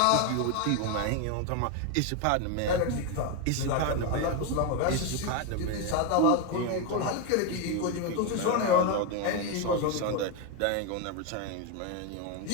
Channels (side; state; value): both; different; correlation 0.02